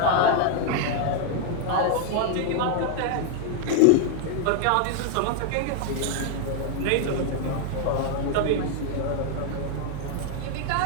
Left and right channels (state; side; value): different; both; correlation 0.00